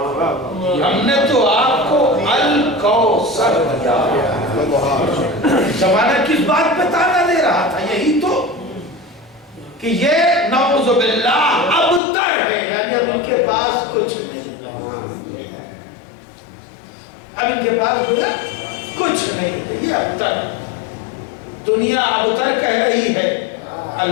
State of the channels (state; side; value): drops out; right; at 12.0 s